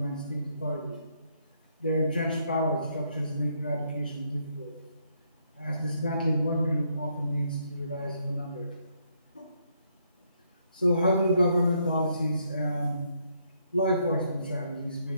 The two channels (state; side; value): inverted; both; correlation -0.73